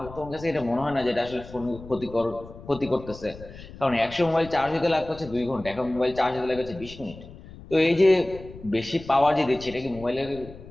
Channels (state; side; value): noise; left; rumble, 16 dB below the sound